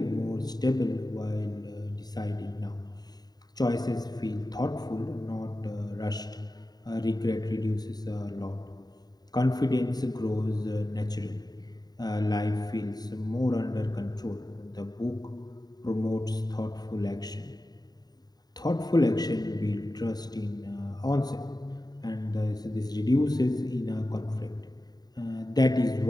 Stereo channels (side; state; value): right; late; 0.19 ms